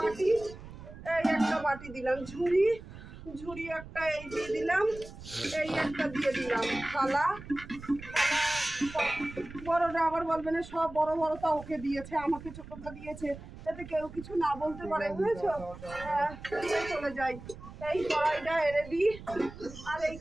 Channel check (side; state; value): right; noise; rumble, 15 dB below the sound